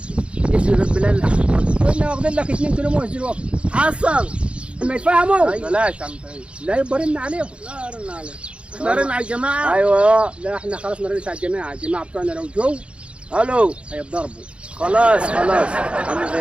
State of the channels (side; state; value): left; late; 0.058 ms